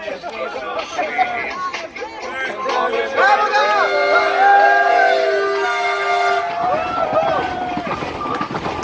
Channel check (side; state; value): both; identical; correlation 1.00